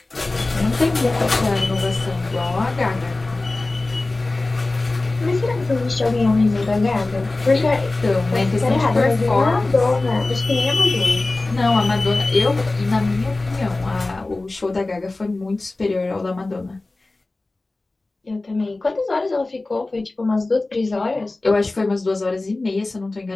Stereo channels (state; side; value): quieter; right; 3.1 dB